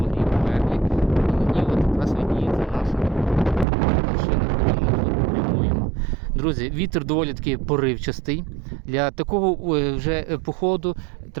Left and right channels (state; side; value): drops out; left; at 3.7 s